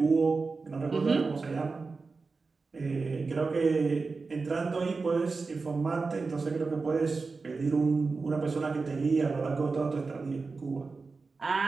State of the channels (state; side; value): quieter; left; 4.2 dB